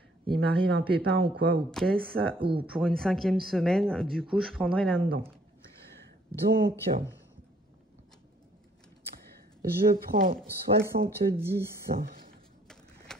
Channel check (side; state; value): both; normal; correlation 0.63